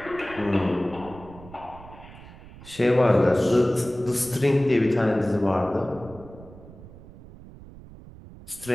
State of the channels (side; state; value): right; noise; rumble, 18 dB below the sound